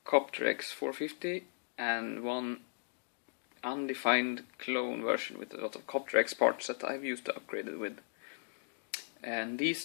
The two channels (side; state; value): right; silent; digital silence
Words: CopterX 450 and one undefined clone version with a lot of CopterX parts that I've used to upgrade it with. And these